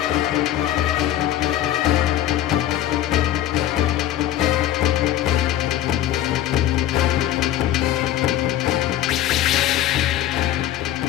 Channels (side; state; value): right; quieter; 12.6 dB